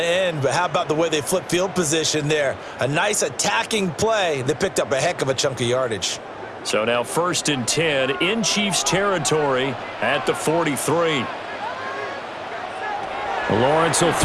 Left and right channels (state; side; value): identical; both; correlation 1.00